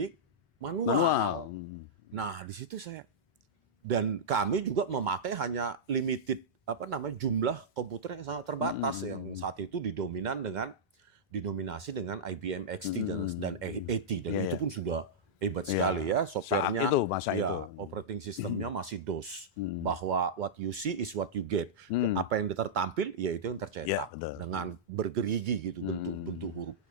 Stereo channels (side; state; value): both; normal; correlation -0.11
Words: manual. Nah, di situ dan kami juga memakai hanya limited jumlah komputer yang sangat terbatas yang saat itu didominasi dengan IBM XT dan AT dan itu pun sudah hebat sekali ya, softwarenya masa itu. Operating sistemnya masih DOS, bahwa what you see is what you get. Apa yang tertampil ya itu yang tercetak dengan bergerigi gitu bentuk huruf.